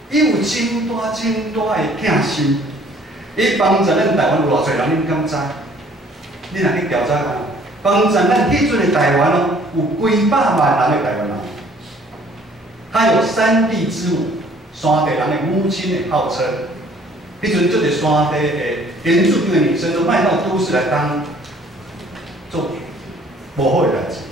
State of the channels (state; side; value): normal; both; correlation 0.57